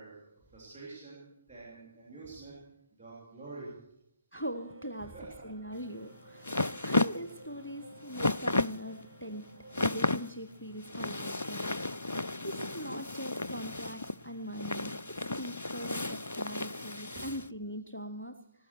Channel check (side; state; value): both; inverted; correlation -0.68